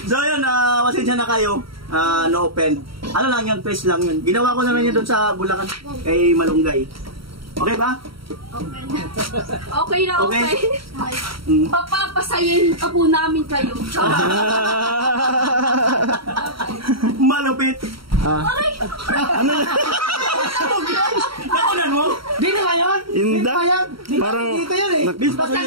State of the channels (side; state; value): left; late; 0.74 ms